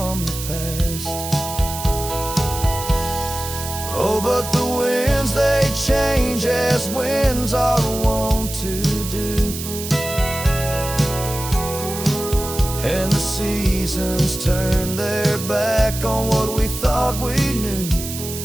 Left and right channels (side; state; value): right; noise; hiss, 8 dB below the sound